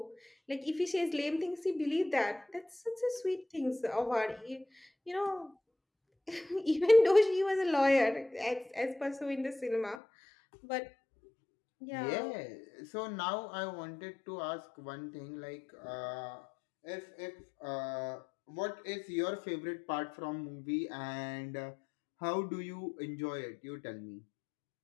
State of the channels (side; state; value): right; drops out; at 10.0 s